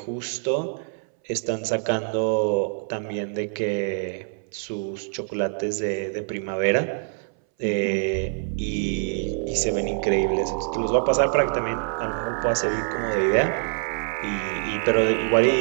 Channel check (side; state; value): left; silent; 62 dB below the other